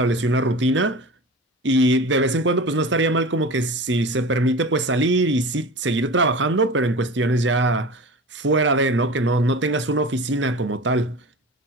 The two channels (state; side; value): normal; both; correlation 0.33